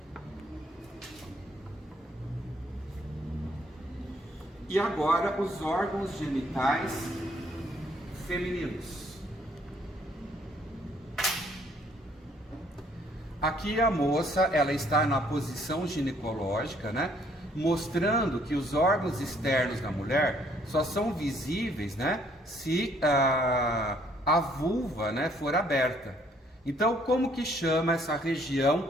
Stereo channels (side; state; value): both; normal; correlation 0.64